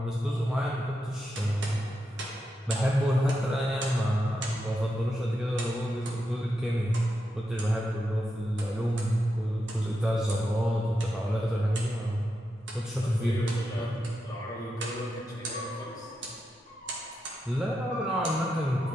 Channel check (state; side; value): normal; both; correlation 0.86